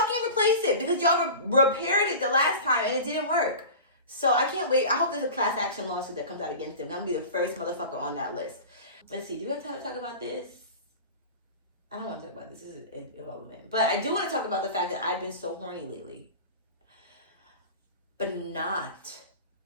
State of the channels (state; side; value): inverted; both; correlation -0.34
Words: replace it, because y'all repaired it the last time and it didn't work. So I can't wait. I hope there's a class action lawsuit that comes out against them. I'm gonna be the first motherfucker on that list. Let's see, do we have time to talk about this? I don't want to talk about this. This is irrelevant. But I do want to talk about the fact that I've been so horny lately. But not.